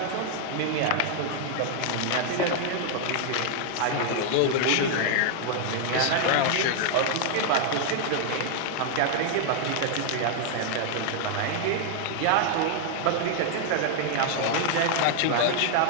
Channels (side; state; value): both; different; correlation 0.00